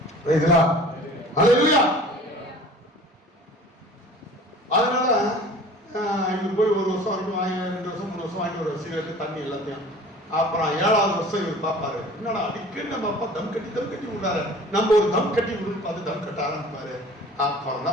அதனால இவரு போய் 1 வருஷம் வரைக்கும் வாங்கி 2 வருஷம் 3 வருஷம் வாங்கி ஒரு சிகரெட்டு தண்ணி எல்லாத்தையும். அப்புறம் 7வது வருஷம் இவர் பார்ப்பாரு, என்னடா அடிக்கடி நம்ம அப்பா தம் கட்டி விடுறாரு, நம்ம ஒரு தம் கட்டி விடுன்னு பார்த்து தம் கட்ட ஆரம்பிப்பாரு. அப்புறம்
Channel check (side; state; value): both; normal; correlation 0.45